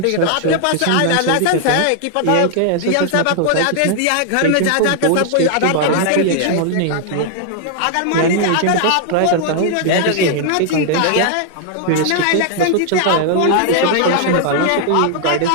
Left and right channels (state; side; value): different; both; correlation 0.00